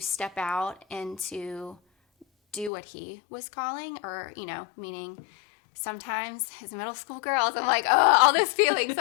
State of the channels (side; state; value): right; drops out; at 2.7 s